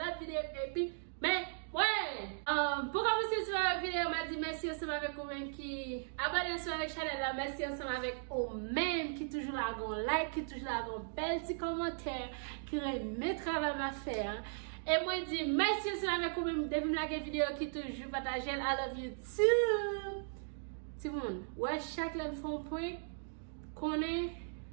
vidéo et puis, mais ouais, pour commencer sur la vidéo, on m'a dit merci ensemble avec vous-même qui abonnez sur la chaîne là, merci ensemble avec vous-même qui toujours là, like, qui toujours là, bel petit commentaire, qui remet travail à faire. Et moi, je dis merci ensemble avec vous-même depuis la vidéo qui toujours partage. I love you too. Tout le monde, ouais, chaque fois qu'on point, qu'on est,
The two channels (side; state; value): left; silent; digital silence